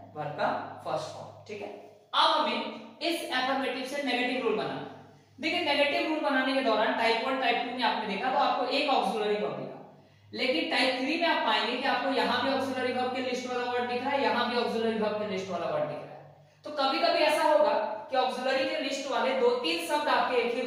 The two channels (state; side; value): identical; both; correlation 1.00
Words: वर्ब का फर्स्ट फॉर्म। ठीक है, अब हमें इस एफर्मेटिव से नेगेटिव रूल बनाना। देखिए नेगेटिव रूल बनाने के दौरान टाइप 1 टाइप 2 में आपने देखा तो आपको एक ऑक्सिलरी वर्ब दिखा, लेकिन टाइप 3 में आप पाएंगे कि आपको यहां भी ऑक्सिलरी वर्ब के लिस्ट वाला वर्ड दिख रहा है, यहां भी ऑक्सिलरी वर्ब के लिस्ट वाला वर्ड दिख रहा है। तो कभी-कभी ऐसा होगा कि ऑक्सिलरी के लिस्ट वाले 2-3 शब्द आपके एक ही